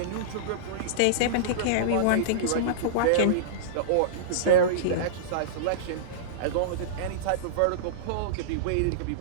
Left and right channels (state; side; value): different; both; correlation -0.03